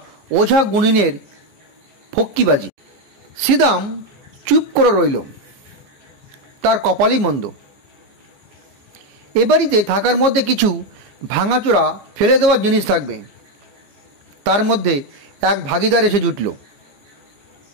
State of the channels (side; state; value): left; late; 15 ms